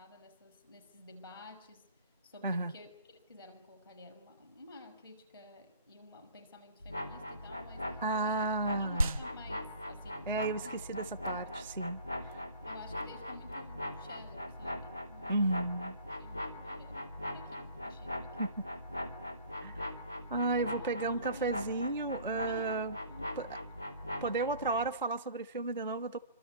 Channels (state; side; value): inverted; both; correlation -0.51